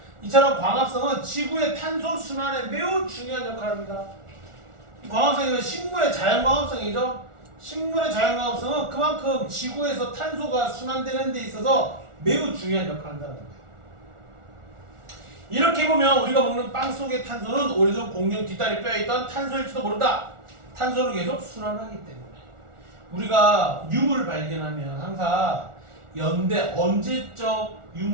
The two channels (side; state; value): left; late; 1.4 ms